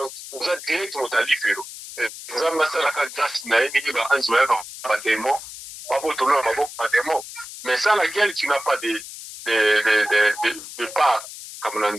vous êtes directement allé faire. Vous avez massé la grâce na ni ba anzoya pas démon, pas botono pas démon. Mais sans laquelle tu n'as pas de part comme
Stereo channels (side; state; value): left; noise; hiss, 13 dB below the sound